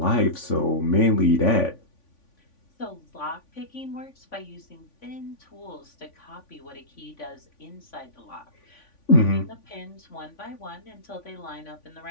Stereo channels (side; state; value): right; late; 3.5 ms